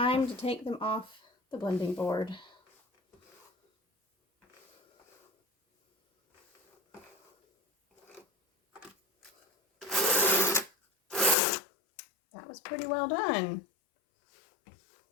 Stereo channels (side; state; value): right; drops out; at 11.4 s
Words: to take them off the blending board. That was pretty well done.